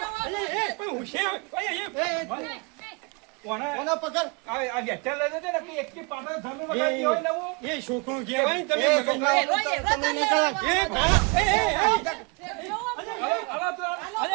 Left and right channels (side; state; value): left; quieter; 29.9 dB